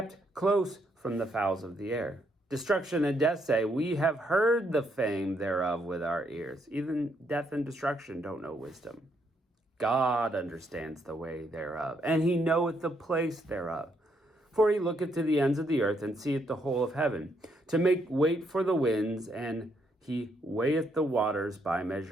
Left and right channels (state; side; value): normal; both; correlation 0.75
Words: close from the fowls of the air. Destruction and death say, we have heard the fame thereof with our ears. Even death and destruction don't know wisdom. God understands the way thereof, and he knoweth the place thereof. For he looketh to the ends of the earth, and seeth the whole of heaven, to make wait for the winds, and He weigheth the waters by